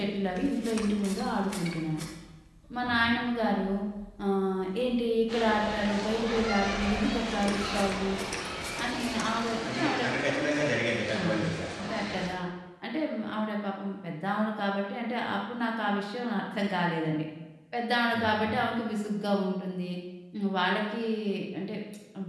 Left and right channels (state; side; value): identical; both; correlation 1.00